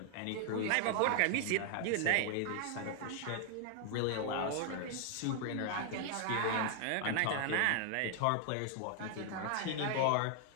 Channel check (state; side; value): different; both; correlation 0.00